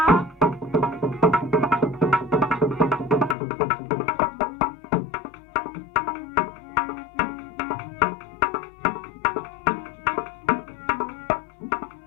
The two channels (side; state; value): right; drops out; at 3.4 s